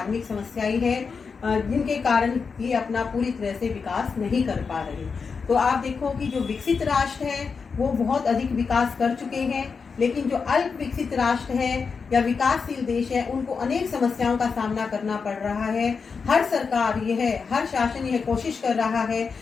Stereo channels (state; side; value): quieter; right; 5.3 dB